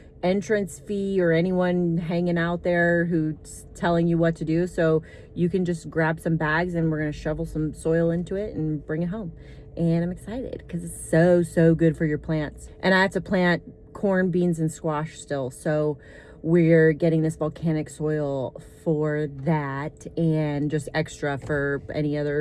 entrance fee or anyone hanging out there who's telling you what to do, so you can just grab some bags and we're gonna shovel some soil into it and bring it home. And I'm excited because it's so good for your plants. And I have to plant corn, beans, and squash still, so we're getting this volcanic soil for that and just extra for any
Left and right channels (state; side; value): identical; both; correlation 1.00